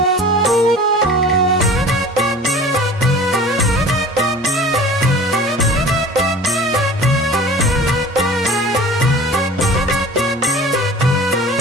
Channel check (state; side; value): normal; both; correlation 0.42